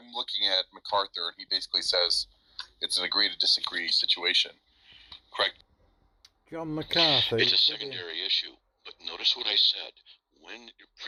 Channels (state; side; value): identical; both; correlation 1.00